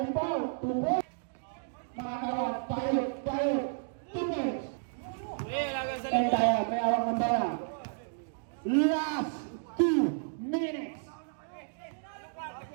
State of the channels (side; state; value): left; silent; digital silence